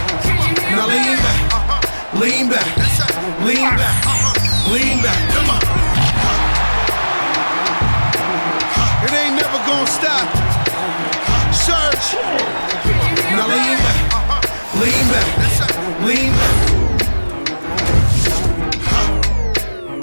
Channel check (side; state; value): both; inverted; correlation -1.00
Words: Now lean back, lean back, lean back, lean back. Come on. It ain't never gonna stop. Search. Now lean back, lean back.